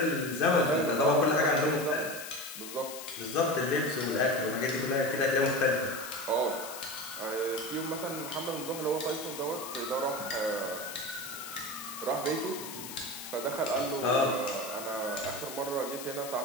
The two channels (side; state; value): left; noise; hiss, 10 dB below the sound